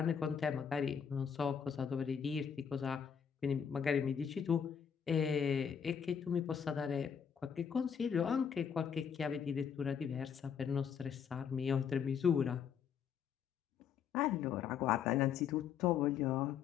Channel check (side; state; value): right; quieter; 7.4 dB